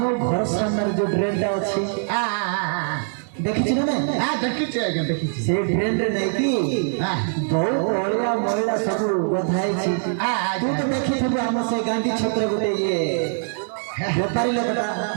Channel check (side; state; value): left; silent; digital silence